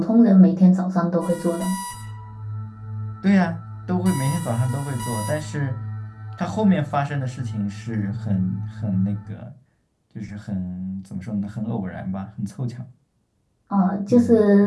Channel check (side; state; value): both; identical; correlation 1.00